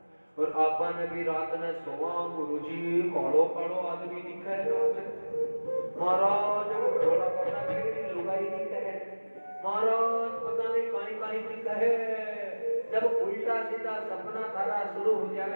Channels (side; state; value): both; inverted; correlation -1.00